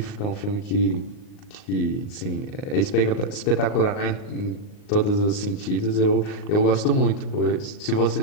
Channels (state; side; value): late; right; 38 ms